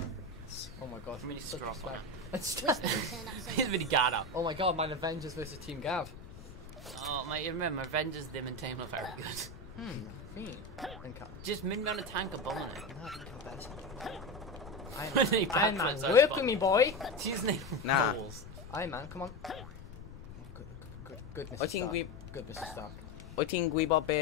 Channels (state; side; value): noise; left; rumble, 15 dB below the sound